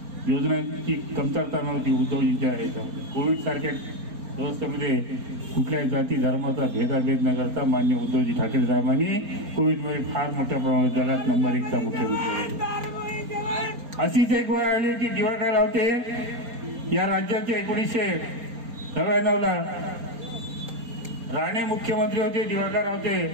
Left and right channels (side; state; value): left; late; 4.3 ms